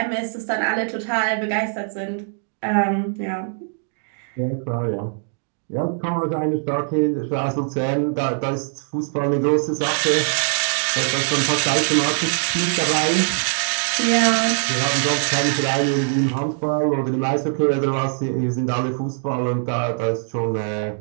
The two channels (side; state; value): left; silent; digital silence